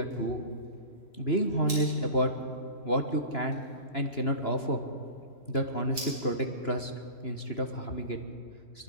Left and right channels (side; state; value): right; late; 2.9 ms